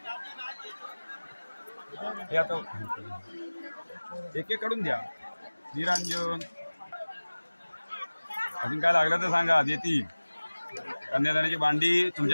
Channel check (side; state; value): both; inverted; correlation -1.00